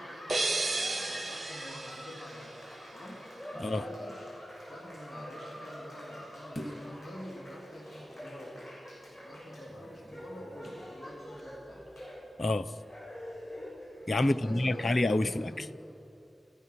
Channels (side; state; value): both; normal; correlation 0.93